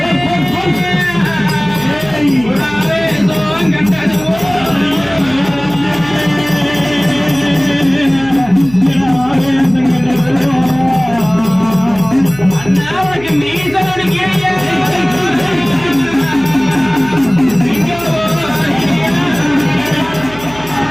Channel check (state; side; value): noise; right; hum, 17 dB below the sound